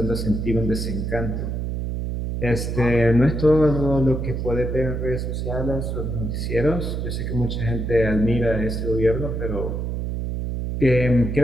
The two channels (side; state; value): right; noise; hum, 3 dB below the sound